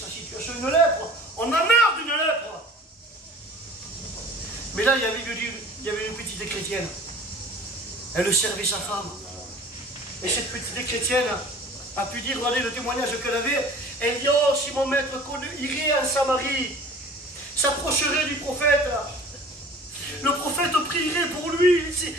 situation, une lèpre. On a marre d'une lèpre. Mais là, il y avait une petite chrétienne. Elle servait sa femme. Et cette petite chrétienne a pu dire, regardez le témoignage qu'elle avait. Elle dit, oh, si mon maître irait en Samarie, s'approcherait du prophète. Le prophète prierait pour lui.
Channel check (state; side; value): normal; both; correlation 0.45